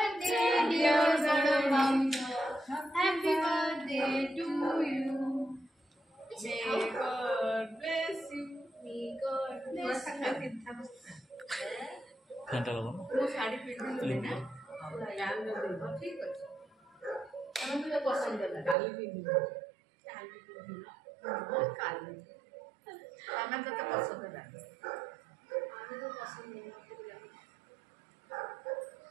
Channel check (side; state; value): left; drops out; at 18.8 s